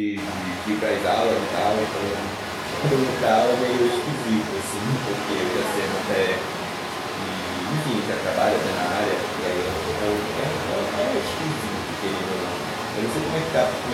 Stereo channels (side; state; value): both; identical; correlation 1.00